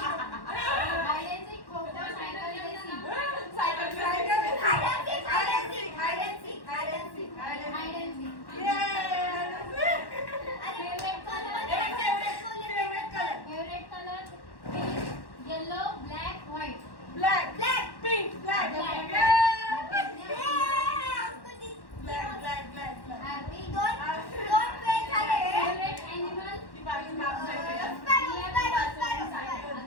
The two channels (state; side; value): late; right; 1.1 ms